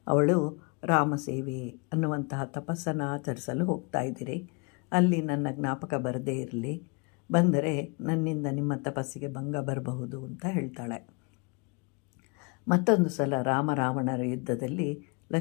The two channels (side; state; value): right; quieter; 32.0 dB